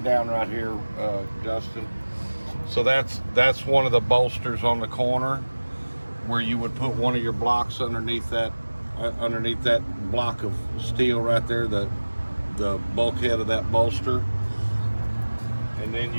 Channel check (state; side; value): inverted; both; correlation -1.00